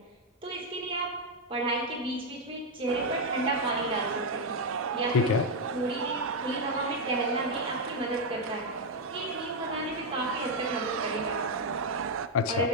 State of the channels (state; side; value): normal; both; correlation 0.01